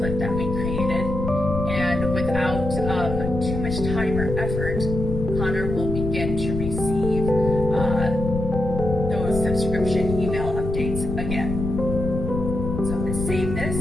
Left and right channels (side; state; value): left; noise; rumble, 4 dB below the sound